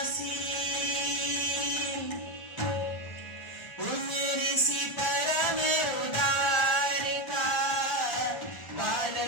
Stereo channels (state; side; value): late; right; 1.4 ms